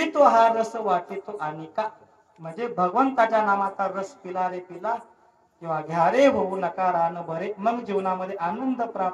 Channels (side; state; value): both; identical; correlation 1.00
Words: तो हा रस वाटे तो अनिका. म्हणजे भगवंताच्या नामाचा रस पिला रे पिला, किंवा घ्या रे होऊ नका रान बरे, मग जीवनामध्ये आनंद